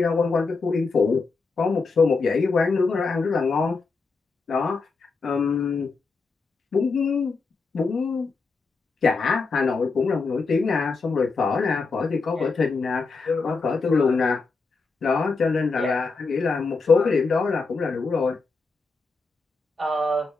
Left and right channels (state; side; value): quieter; right; 4.2 dB